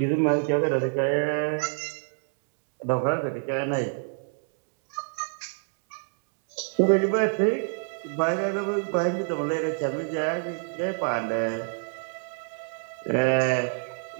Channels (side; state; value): left; silent; digital silence